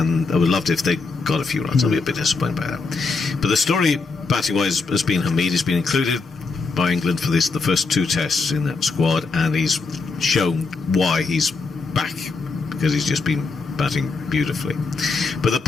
I would love it if they got a few runs. I'll be a bit disappointed by that. But the story, batting-wise, has been Hamid. He's been included by England for the first 2 tests in that squad, and he's shown why he's back, because he's just been batting beautifully. But the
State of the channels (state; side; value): quieter; right; 4.2 dB